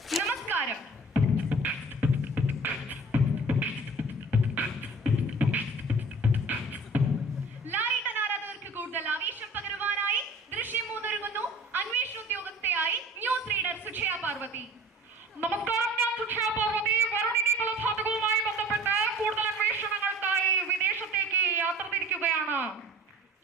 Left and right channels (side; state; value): both; normal; correlation 0.45